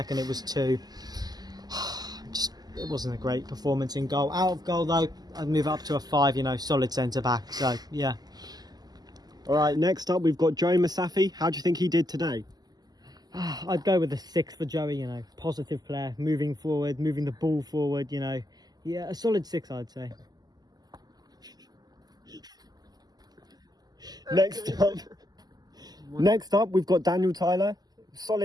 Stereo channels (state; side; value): late; left; 0.20 ms